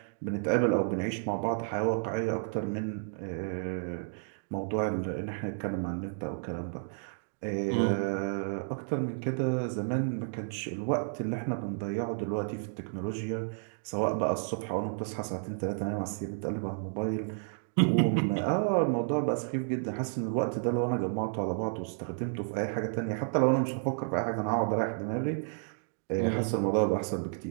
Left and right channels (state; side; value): silent; left; digital silence